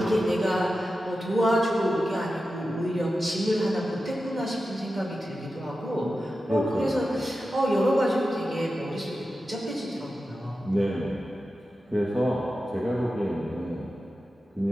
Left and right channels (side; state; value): both; normal; correlation 0.92